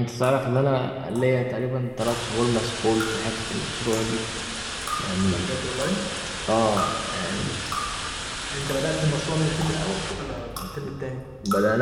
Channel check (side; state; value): both; identical; correlation 1.00